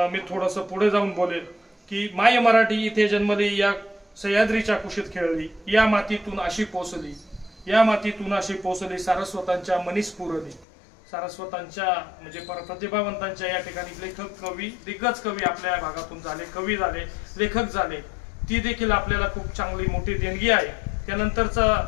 मी थोडंसं पुढे जाऊन बोलेल की माय मराठी इथे जन्मली, या सह्याद्रीच्या कुशीत खेळली, या मातीतून अशी पोचली, या मातीतून अशी पोचली, सारस्वतांच्या मनीस पुरली. सारस्वतांच्या म्हणजे प्रतिभावंतांच्या या ठिकाणी लेखक, कवी, दिग्गज कवी आपल्या भागातून झाले, कवी झाले, लेखक झाले. ती देखील आपल्याला खूप चांगली मोठी देणगी आहे. त्यानंतरचा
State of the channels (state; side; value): drops out; right; at 10.7 s